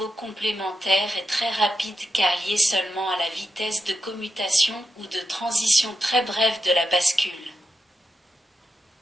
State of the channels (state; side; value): normal; both; correlation 0.87